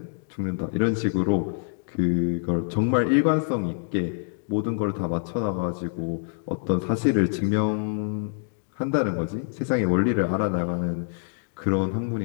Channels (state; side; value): silent; right; digital silence